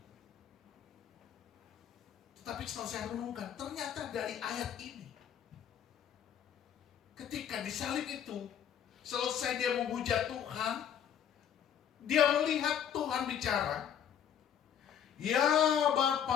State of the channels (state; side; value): quieter; right; 9.0 dB